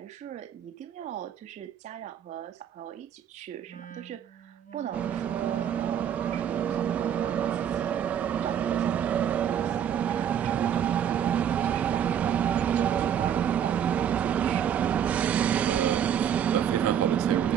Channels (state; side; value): quieter; left; 9.2 dB